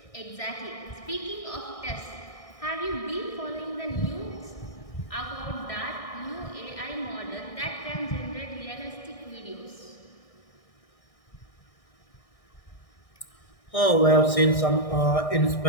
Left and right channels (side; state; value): right; late; 1.6 ms